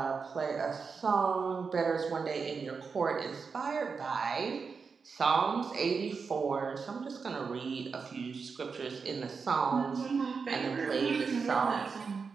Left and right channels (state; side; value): quieter; left; 5.3 dB